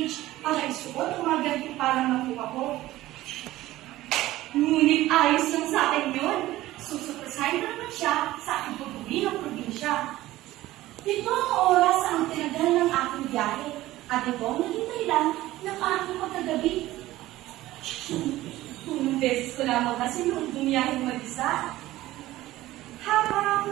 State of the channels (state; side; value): quieter; left; 16.3 dB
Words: para isuot ang mga ganito parang nakuha ko. Ngunit ayos lang sa akin yun. Susupresahin na naman siya sa aking pag-uwi ng probinsya. Ito ang oras ang tinagal ng aking biyahe at ito ang naging dahilan ng aking pagkagabi. Unang beses ko lamang kasi noong bumiyaheng mag-isa.